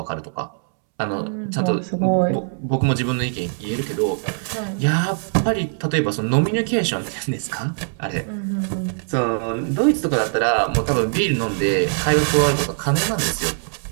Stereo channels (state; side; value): silent; left; 64 dB below the other